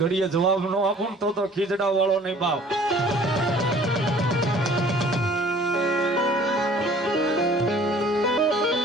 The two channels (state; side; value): normal; both; correlation 0.52